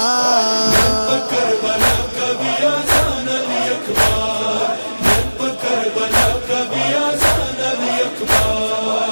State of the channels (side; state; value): both; inverted; correlation -1.00